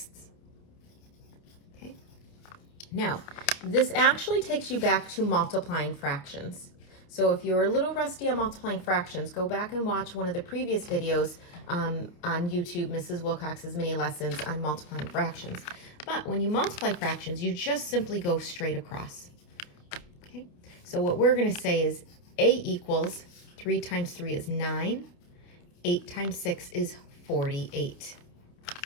Okay, now this actually takes you back to multiplying fractions. So if you're a little rusty on multiplying fractions, go back and watch one of the previous videos on YouTube, Mrs. Wilcox's mini lessons on multiplying fractions. But when you multiply fractions, you just simply go straight across. Okay, so what we're going to say is A equals 3 times 3 is 9, 8 times 6 is 48.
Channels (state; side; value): late; right; 28 ms